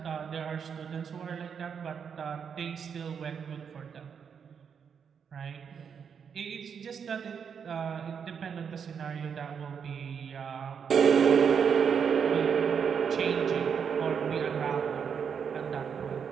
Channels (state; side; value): quieter; left; 7.0 dB